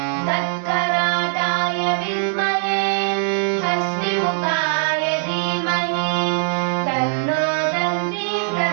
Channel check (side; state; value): left; silent; 65 dB below the other